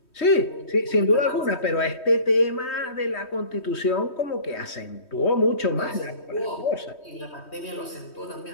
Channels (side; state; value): right; late; 3.2 ms